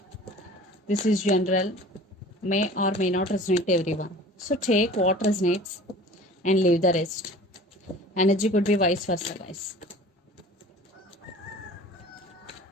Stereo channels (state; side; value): normal; both; correlation 0.43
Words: This is general, may or may not resonate to everyone. So take what resonates and leave the rest. Energy could be vice versa, guys.